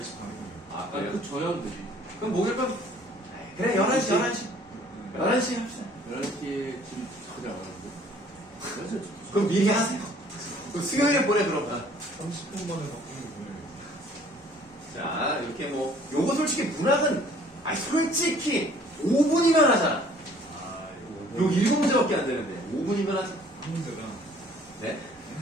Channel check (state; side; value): normal; both; correlation 0.56